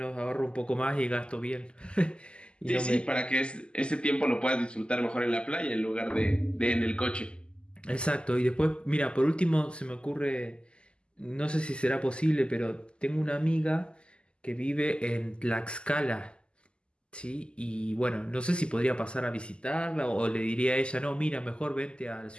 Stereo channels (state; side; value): late; right; 0.050 ms